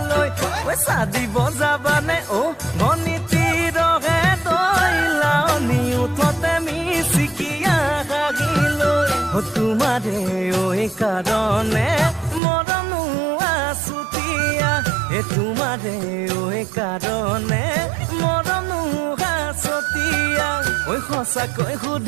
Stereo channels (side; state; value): left; drops out; at 12.4 s